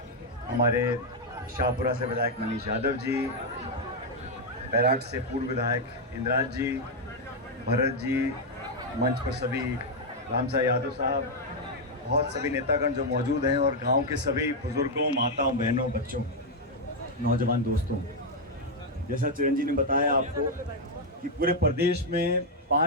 हमारे शाहपुरा से विधायक मनीष यादव जी, बैराट से पूर्व विधायक इंद्राज जी, भरत जी, मंच पर सभी रामसा यादव साहब, बहुत सभी नेतागण जो मौजूद हैं, और गांव के सभी बुजुर्गों, माताओं, बहनों, बच्चों, नौजवान दोस्तों। जैसा चिरंजीव ने बताया आपको कि पूरे प्रदेश में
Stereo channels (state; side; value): normal; both; correlation 0.00